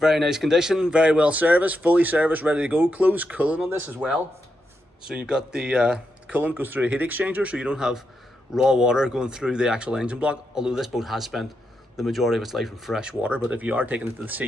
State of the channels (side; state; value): both; normal; correlation 0.84